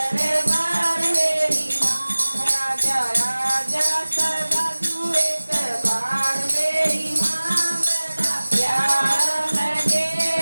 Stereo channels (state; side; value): inverted; both; correlation -1.00